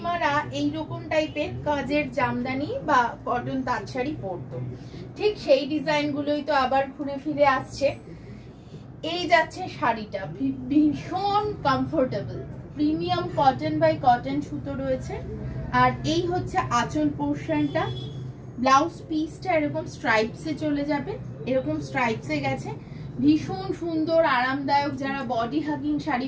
এইরকম টাইপের কাজের জামদানি বা কটন তাঁত শাড়ি পরতো, ঠিক সেই ডিজাইন গুলোই তো আবার ঘুরে ফিরে আসছে। এই যাচ্ছে শাড়িটা, ভীষণ comfortable, premium cotton by cotton সুতো রয়েছে। আর এই হচ্ছে আঁচল পোর্শনটা। ব্লাউজ পিসটা এরকম স্ট্রাইপসে চলে যাবে, এরকম স্ট্রাইপসে গেছে, ভীষণ সুন্দর আরামদায়ক। যারা বডি হাগিং শাড়ি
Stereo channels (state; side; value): identical; both; correlation 1.00